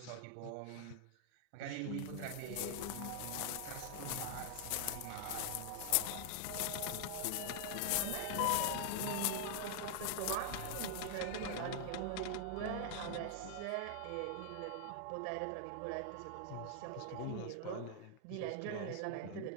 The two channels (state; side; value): different; both; correlation 0.00